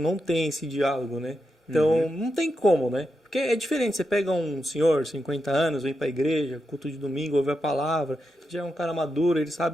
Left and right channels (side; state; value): both; normal; correlation 0.86